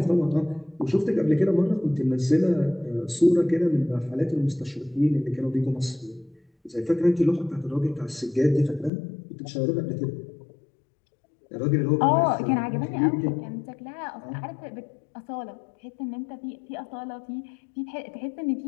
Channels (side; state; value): right; drops out; at 8.9 s